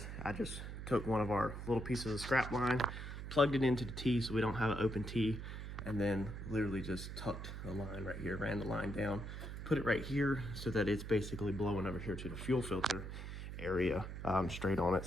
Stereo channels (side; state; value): right; noise; hum, 7 dB below the sound